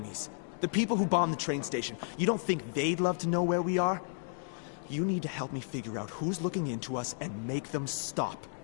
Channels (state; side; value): silent; right; digital silence